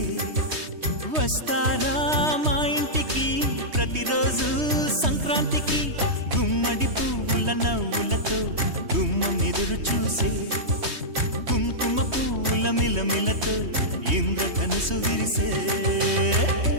వస్తారా మా ఇంటికి ప్రతిరోజు సంక్రాంతికి గుమ్మడి పువ్వుల నవ్వులతో గుమ్మం ఎదురు చూసే కుంకుమ పువ్వుల మిలమిలతో ఇంద్రధనుసు విరిసే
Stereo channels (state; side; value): late; left; 3.2 ms